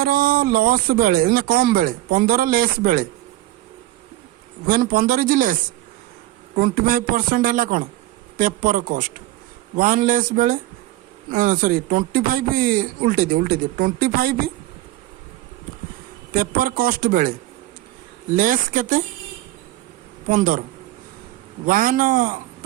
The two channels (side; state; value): left; quieter; 16.1 dB